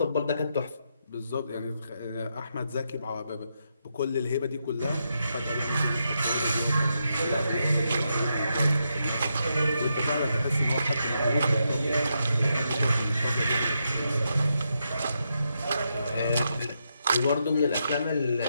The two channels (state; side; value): inverted; both; correlation -0.82